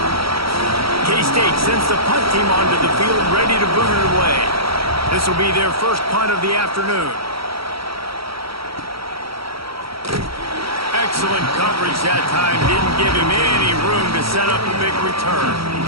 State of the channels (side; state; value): left; late; 0.75 ms